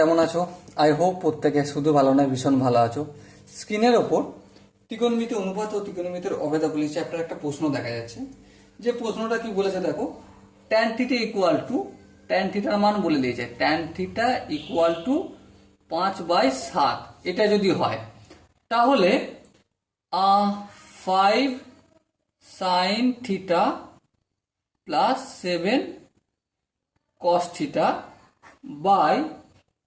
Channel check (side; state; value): both; identical; correlation 1.00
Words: আছো? I hope প্রত্যেকে শুধু ভালো নয়, ভীষণ ভালো আছো। স্ক্রিনের ওপর ত্রিকোণমিতি অনুপাত ও ত্রিকোণমিতির অভেদাবলী চ্যাপ্টার একটা প্রশ্ন দেখা যাচ্ছে। যে প্রশ্নটা কি বলেছে দেখো, tan theta equal two, tan থিটার মান বলে দিয়েছে, ট্যান থিটা ইকুয়াল টু 5/7। এটা যদি হয় তাহলে 5 sine theta plus 7 cos theta by